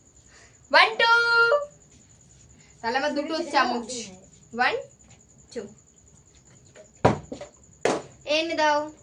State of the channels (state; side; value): identical; both; correlation 1.00